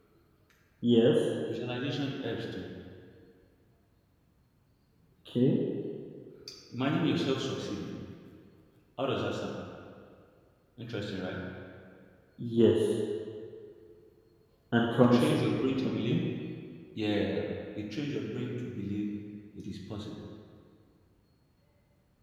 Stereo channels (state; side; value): identical; both; correlation 1.00